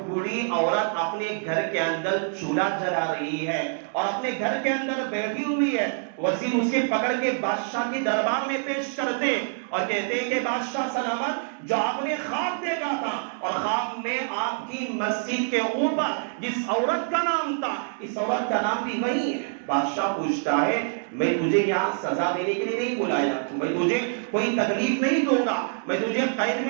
بوڑھی عورت اپنے گھر کے اندر چولہا جلا رہی ہے اور اپنے گھر کے اندر بیٹھی ہوئی ہے۔ وزیر اسے پکڑ کے بادشاہ کے دربار میں پیش کرتے اور کہتے ہیں کہ بادشاہ سلامت جو آپ نے خواب دیکھا تھا اور خواب میں آپ آپ کی مسجد کے اوپر جس عورت کا نام تھا اس عورت کا نام بھی وہی ہے۔ بادشاہ پوچھتا ہے میں تجھے یہاں سزا دینے کے لیے نہیں بلایا، میں تجھے کوئی تکلیف نہیں دوں گا، میں تجھے قید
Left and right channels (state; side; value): silent; left; digital silence